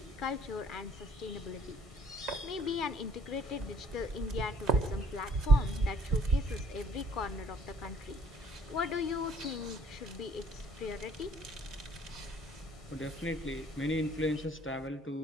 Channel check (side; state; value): both; normal; correlation 0.58